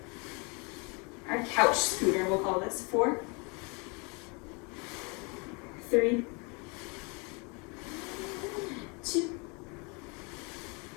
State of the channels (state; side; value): quieter; right; 31.3 dB